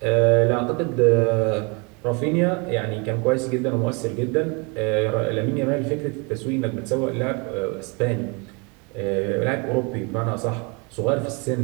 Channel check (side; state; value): left; quieter; 31.2 dB